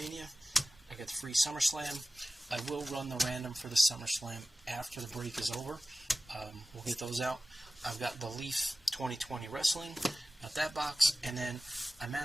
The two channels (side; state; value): both; normal; correlation 0.96